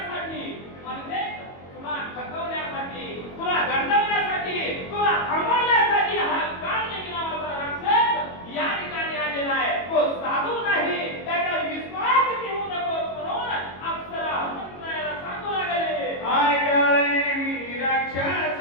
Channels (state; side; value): late; right; 22 ms